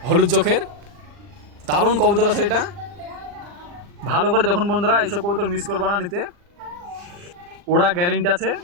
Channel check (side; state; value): left; late; 40 ms